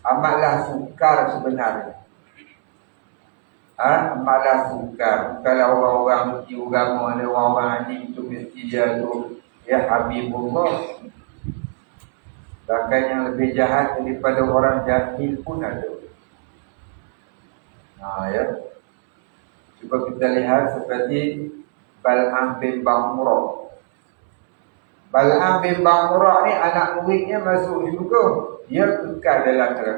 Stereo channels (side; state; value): left; silent; 66 dB below the other